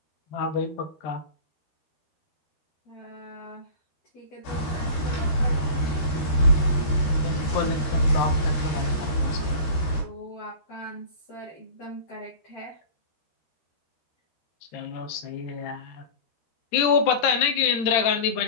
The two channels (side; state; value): right; late; 13 ms